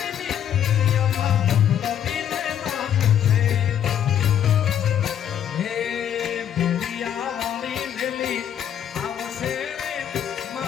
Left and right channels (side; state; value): right; quieter; 9.6 dB